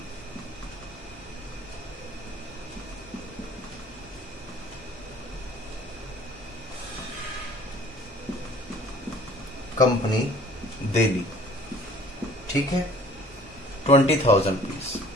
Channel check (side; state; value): both; normal; correlation 0.51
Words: Company Delhi. ठीक है, 20,000 रुपीज।